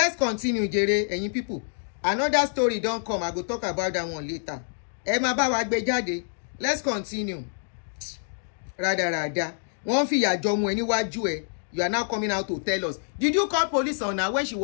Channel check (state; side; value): silent; right; digital silence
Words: continue, jere, ẹ̀yin people. Another story don come. I go talk about that one later. Ẹ máa bá wa gbé jáde. Let's continue. Rada. Wọ́n fi ìyà jọ ọmọ ẹ níwájú ẹ. You are now coming out to tell us. Did you call police on her when she